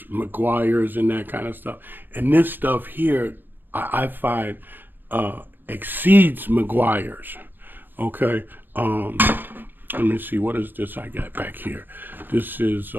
McGuire's and that kind of stuff. And this stuff here, I find exceeds McGuire's. Okay. Let me see, what is this I got back here? This is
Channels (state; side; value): late; left; 0.093 ms